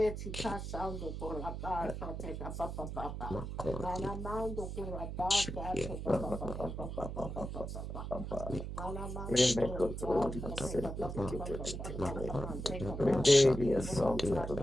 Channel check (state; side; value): noise; right; hum, 6 dB below the sound